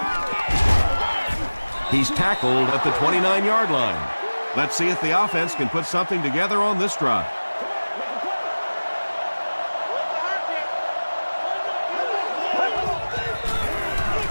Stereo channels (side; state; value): both; inverted; correlation -1.00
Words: He's tackled at the 29-yard line. Let's see if the offense can put something together on this drive.